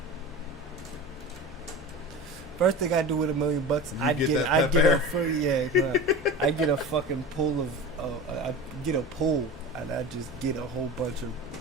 First thing I do with $1 million, You get that Pep Air? I get a fucking pool of, I get a pool and I just get a whole bunch of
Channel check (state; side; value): normal; both; correlation 0.32